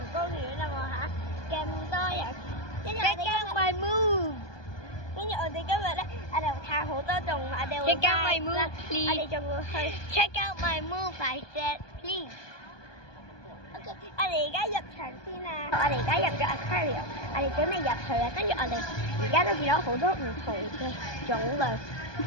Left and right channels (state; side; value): late; right; 1.2 ms